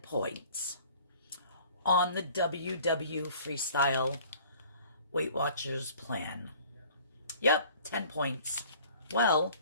points on the WW Freestyle Weight Watchers plan. Yep, 10 points. Well,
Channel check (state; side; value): inverted; both; correlation -0.50